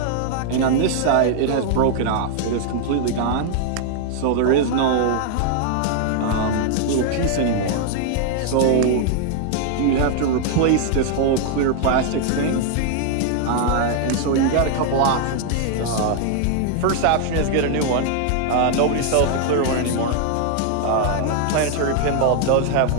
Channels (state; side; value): different; both; correlation 0.00